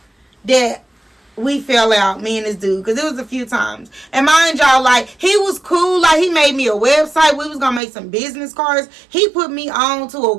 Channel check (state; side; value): drops out; left; at 7.8 s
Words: that we fell out, me and this dude, because it was a few times. And mind y'all, like, he was cool. Like, he made me a website. We was going to make some business cards. He put me on to a